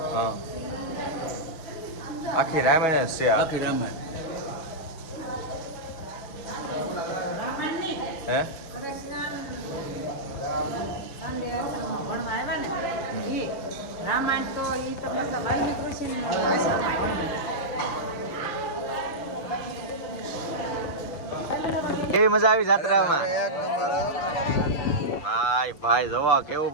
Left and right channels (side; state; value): right; late; 6.5 ms